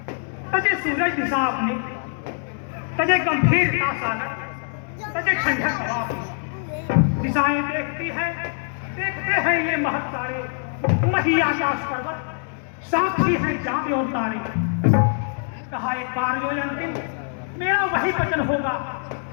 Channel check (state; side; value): silent; right; 63 dB below the other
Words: तजे सूरज दिशा अपनी, तजे गंभीरता सागर, तजे ठंडक हवा अपनी। दिशाएं देखती है, देखते हैं ये महत तारे, मही आकाश पर्वत, साक्षी है चांद और तारे। कहा एक बार जो अंतिम मेरा वही वचन होगा,